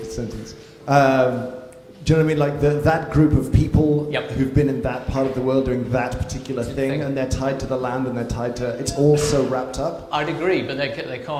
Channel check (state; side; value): identical; both; correlation 1.00